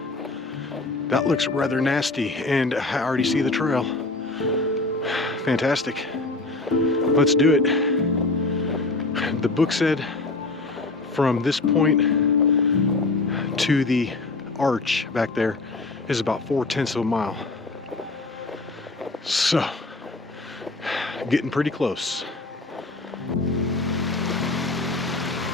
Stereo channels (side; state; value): right; quieter; 3.2 dB